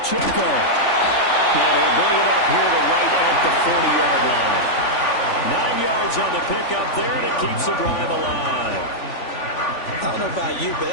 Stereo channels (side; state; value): right; late; 3.5 ms